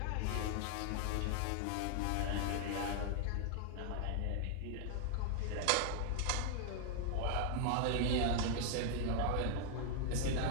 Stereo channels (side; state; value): both; different; correlation 0.00